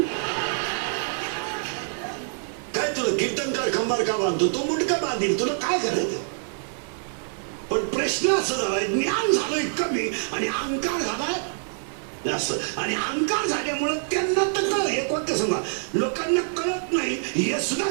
काय तुला कीर्तनकार खंबार का बांधतो तो मुटका बांधील तुला काय करायचं. पण प्रश्न असं झालाय ज्ञान झालंय कमी आणि अहंकार झालाय जास्त आणि अहंकार झाल्यामुळे त्यांना तर कळ हे कोणतं सांगा लोकांना कळत नाही हे सुद्धा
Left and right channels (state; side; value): silent; left; digital silence